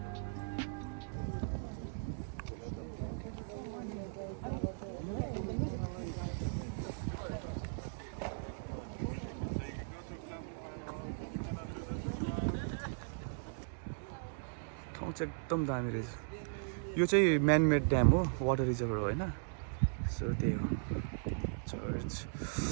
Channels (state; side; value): silent; left; digital silence